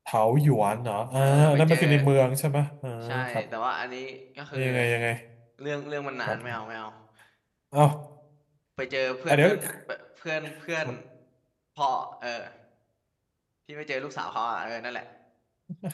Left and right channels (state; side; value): identical; both; correlation 1.00